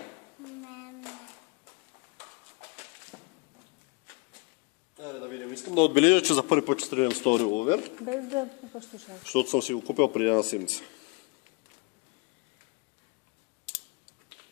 Айде да видим. Искам да отбележа, че за първи път ще стрелям с този револвер, Без да пипаш слушалките. защото съм си го купил преди една седмица.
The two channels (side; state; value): right; quieter; 29.6 dB